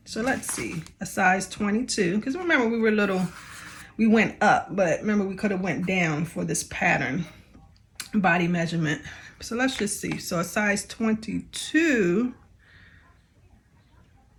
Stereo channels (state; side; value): identical; both; correlation 1.00